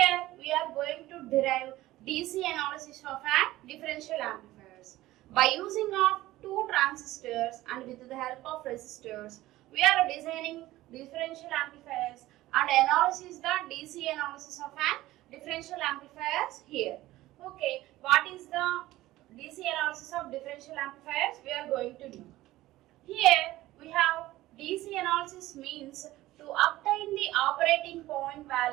we are going to derive DC analysis of an differential amplifiers. By using of two transistors and with the help of resistors, we are designing differential amplifiers and analysis the DC analysis of an differential amplifiers here. Okay, what is the DC analysis of differential amplifiers? We are going to do. Here we have DC analysis means to obtain the operating point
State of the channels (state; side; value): quieter; left; 16.6 dB